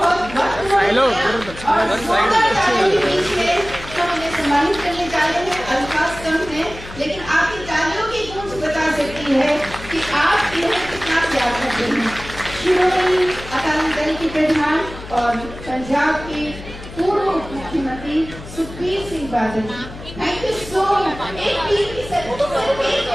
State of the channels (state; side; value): noise; left; hum, 14 dB below the sound